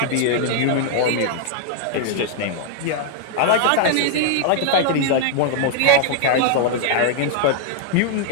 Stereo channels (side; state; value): both; different; correlation -0.01